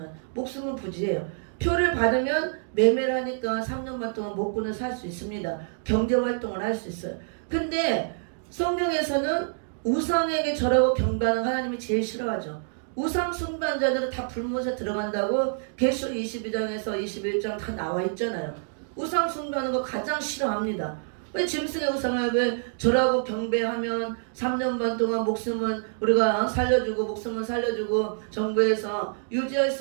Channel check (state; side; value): silent; left; digital silence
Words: 목숨은 부지해요. 표를 받으면 매매를 하니까 3년 반 동안 먹고는 살 수 있습니다. 경제활동을 할 수 있어요. 근데 성경에서는 우상에게 절하고 경배하는 하나님이 제일 싫어하죠. 우상 숭배자들은 다 불못에 들어간다고 계시록 22장에서 21장 다 나와 있잖아요. 우상 숭배하는 거 가장 싫어합니다. 왜 짐승의 우상을 왜 절하고 경배하면 3년 반 동안 목숨은 우리가 살려주고 목숨은 살려주고 정부에서 유지할